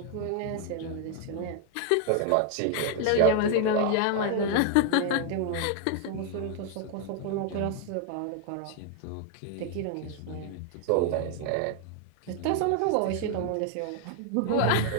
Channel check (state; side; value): different; both; correlation 0.00